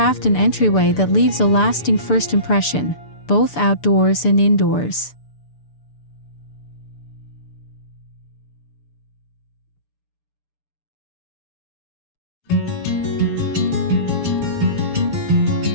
an entryway that leaves a lasting first impression, both outdoors and indoors.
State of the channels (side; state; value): right; late; 6.8 ms